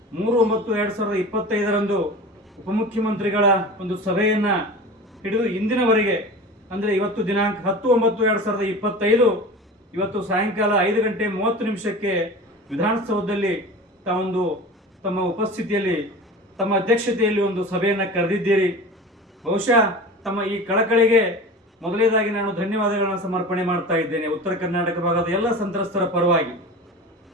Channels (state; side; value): normal; both; correlation 0.34